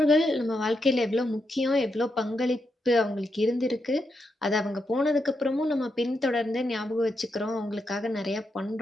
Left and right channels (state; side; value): normal; both; correlation 0.83